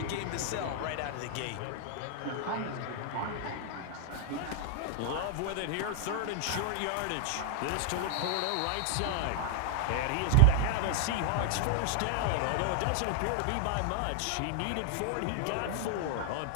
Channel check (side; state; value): both; different; correlation 0.00